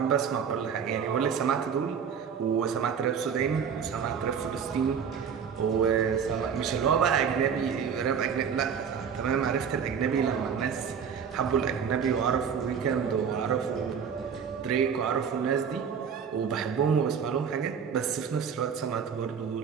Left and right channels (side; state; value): left; quieter; 7.1 dB